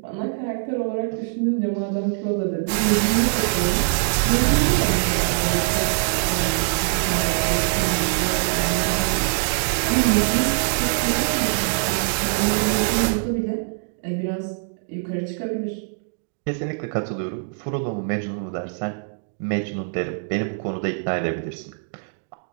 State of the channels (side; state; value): left; silent; digital silence